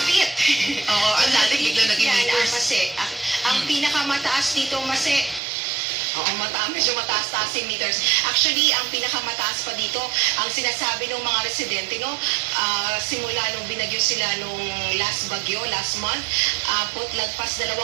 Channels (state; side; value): drops out; left; at 5.4 s